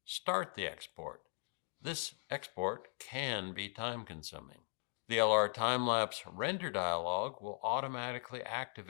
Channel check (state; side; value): silent; right; 52 dB below the other